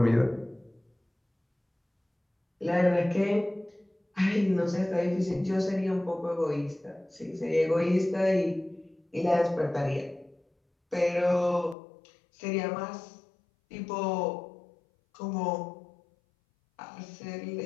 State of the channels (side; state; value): right; drops out; at 11.8 s